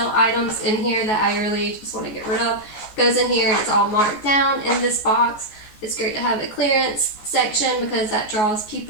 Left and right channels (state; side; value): late; right; 14 ms